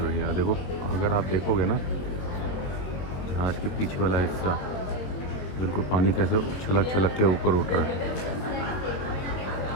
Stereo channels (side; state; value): right; late; 21 ms